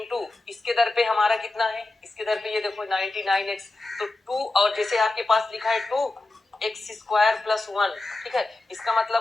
इसके दर पे हमारा कितना है, इसके दर पे ये देखो 99x, तो 2 और जैसे आपके पास लिखा है 2x स्क्वायर प्लस 1, ठीक है, इसका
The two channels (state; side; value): quieter; right; 3.0 dB